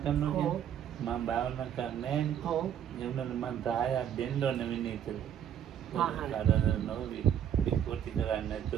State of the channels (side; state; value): left; quieter; 9.6 dB